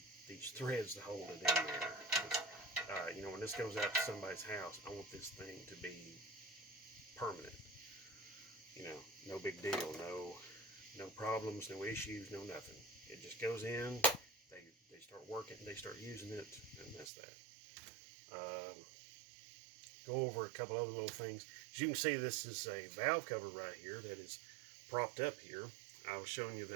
these threads to hold it in there. You know, when this goes out to somebody's house, I want this thing to be permanent. You know, no big deal, no problems, no issues, no nothing. It just goes in, they start working, they start using it, and that's that. Go over a couple other little things. As you can see, this is a valve cover right here that is propped up here. I was showing you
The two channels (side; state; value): left; drops out; at 17.1 s